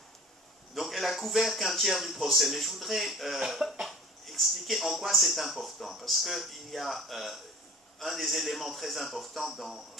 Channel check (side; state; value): both; normal; correlation 0.44